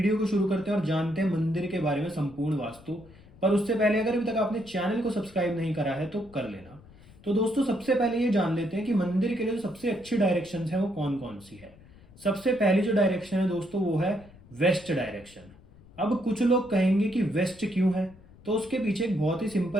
को शुरू करते हैं और जानते हैं मंदिर के बारे में संपूर्ण वास्तु। पर उससे पहले अगर अभी तक आपने चैनल को सब्सक्राइब नहीं करा है तो कर लेना। तो दोस्तों, सबसे पहले ये जान लेते हैं कि मंदिर के लिए जो सबसे अच्छी डायरेक्शन है वो कौन कौन सी है। सबसे पहली जो डायरेक्शन है दोस्तों वो है वेस्ट डायरेक्शन। अब कुछ लोग कहेंगे कि वेस्ट क्यों है, तो उसके पीछे एक बहुत ही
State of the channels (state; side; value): noise; left; rumble, 23 dB below the sound